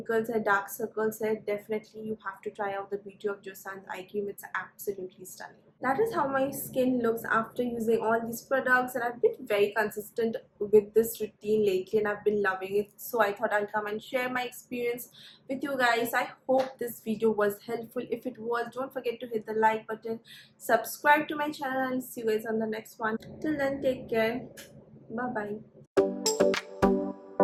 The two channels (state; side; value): identical; both; correlation 1.00